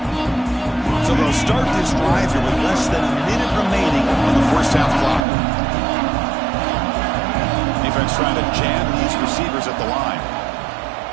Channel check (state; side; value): drops out; left; at 5.2 s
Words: So they'll start this drive here with less than a minute remaining on the first half clock. Defense trying to jam these receivers at the line.